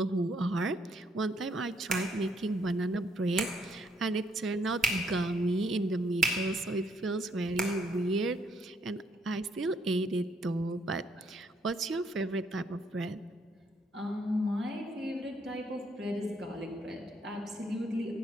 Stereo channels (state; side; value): normal; both; correlation 0.71